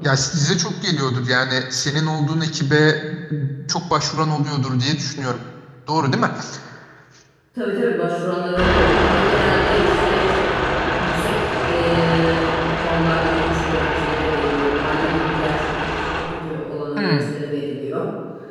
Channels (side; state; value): both; identical; correlation 1.00